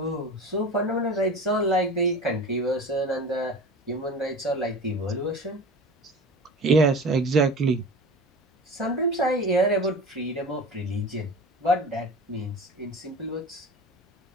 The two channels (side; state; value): both; normal; correlation 0.35